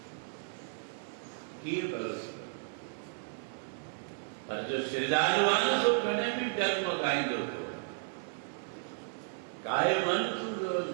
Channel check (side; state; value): left; silent; digital silence